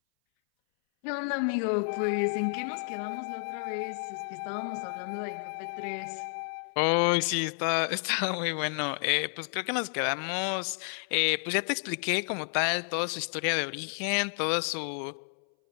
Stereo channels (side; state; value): right; silent; 57 dB below the other